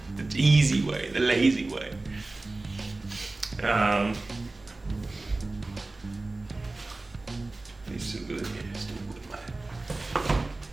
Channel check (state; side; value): quieter; left; 3.2 dB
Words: The easy way, the lazy way. It's too good, yeah, it's too good, man.